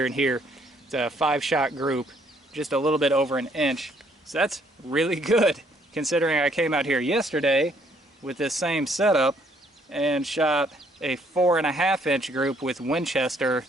and here. It's a 5-shot group, just a little bit over an inch. So that's really good, considering I came out here yesterday with this same setup and shot a 4.5-inch group with Winchester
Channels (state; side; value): normal; both; correlation 0.66